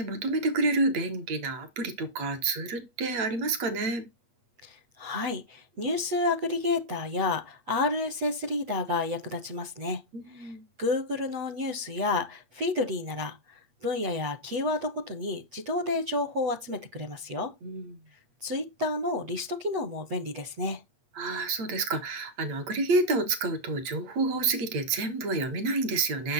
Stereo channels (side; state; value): left; late; 8.3 ms